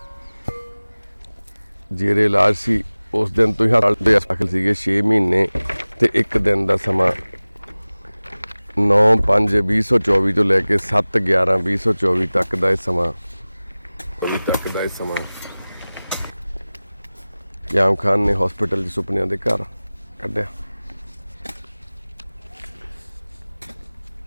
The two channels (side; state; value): both; inverted; correlation -0.98